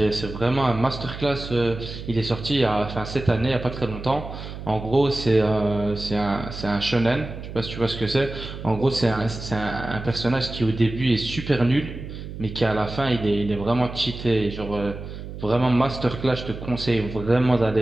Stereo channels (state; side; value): noise; right; hum, 10 dB below the sound